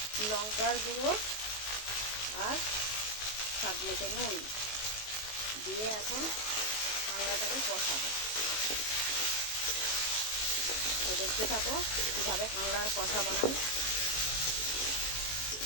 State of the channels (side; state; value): right; late; 19 ms